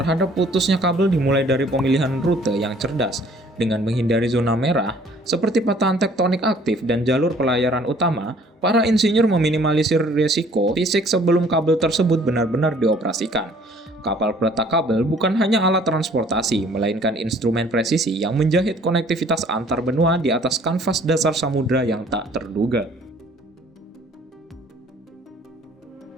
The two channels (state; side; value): normal; both; correlation 0.56